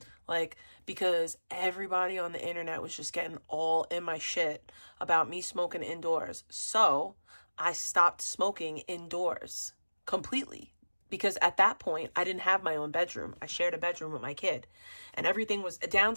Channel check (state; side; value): inverted; both; correlation -1.00